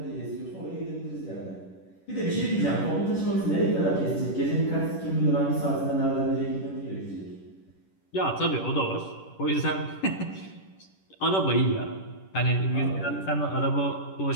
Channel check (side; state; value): right; late; 10 ms